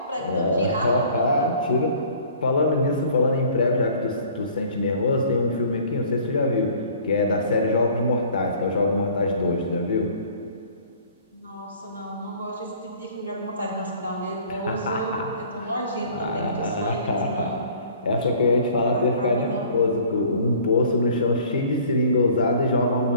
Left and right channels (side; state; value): both; inverted; correlation -0.51